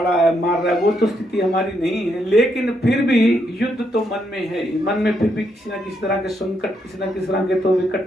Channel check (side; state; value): both; normal; correlation 0.77